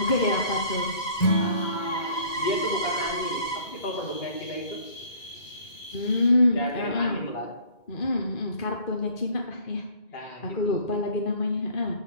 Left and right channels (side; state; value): right; late; 2.2 ms